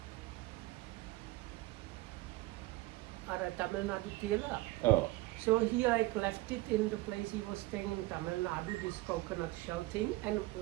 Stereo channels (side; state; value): left; quieter; 19.3 dB